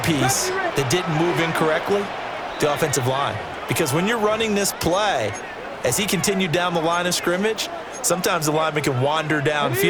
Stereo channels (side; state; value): both; identical; correlation 1.00